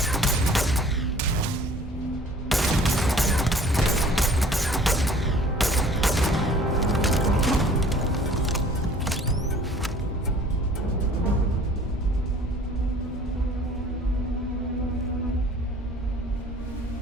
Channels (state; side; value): normal; both; correlation 0.51